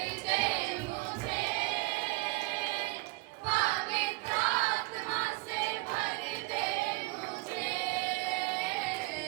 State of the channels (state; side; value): quieter; left; 24.3 dB